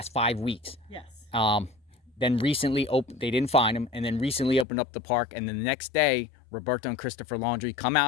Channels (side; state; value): right; drops out; at 4.7 s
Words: 5 weeks. Yes. Then recently they didn't find him, and then recently opened up the park, and then the next day Roberto and Christopher Laundrie come